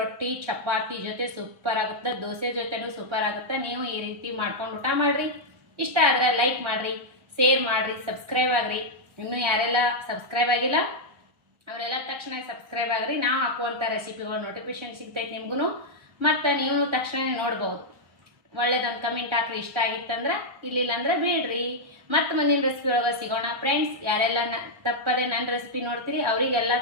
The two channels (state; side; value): late; left; 1.4 ms